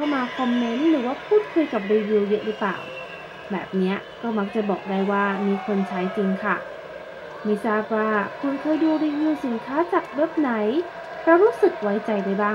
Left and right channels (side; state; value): both; identical; correlation 1.00